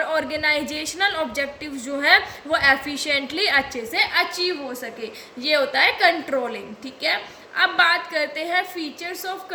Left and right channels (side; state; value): both; identical; correlation 1.00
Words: ऑर्गेनाइजेशनल ऑब्जेक्टिव जो है वो एफिशिएंटली अच्छे से अचीव हो सके। ये होता है कंट्रोलिंग। ठीक है, अब बात करते हैं फीचर्स ऑफ